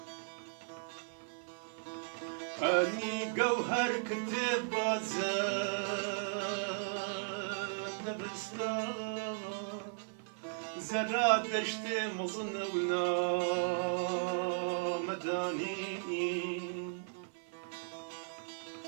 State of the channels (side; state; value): left; silent; 53 dB below the other